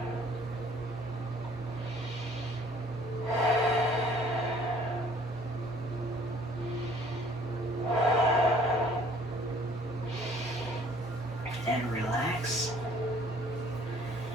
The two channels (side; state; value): both; normal; correlation 0.56